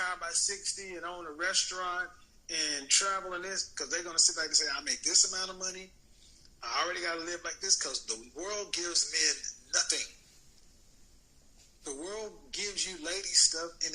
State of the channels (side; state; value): both; identical; correlation 1.00